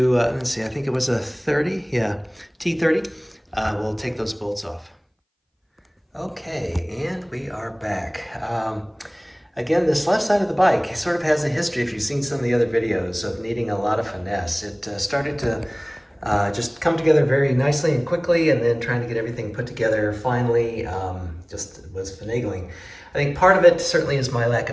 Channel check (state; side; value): identical; both; correlation 1.00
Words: let's see, I think it was a 30, yeah, T30. We'll take those bolts off. Okay, and we are back. Again, this left side of the bike sort of has a history, if you've seen some of the other videos, of needing a lot of finesse. It started to just come together very nicely and quickly, and then trying to get everything put together finally just was finagling. I think part of it certainly is my lack